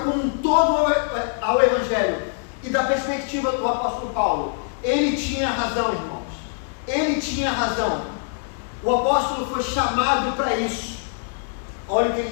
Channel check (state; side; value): silent; right; digital silence